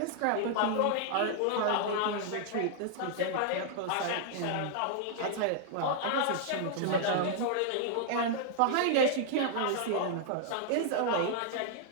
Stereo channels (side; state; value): both; different; correlation -0.01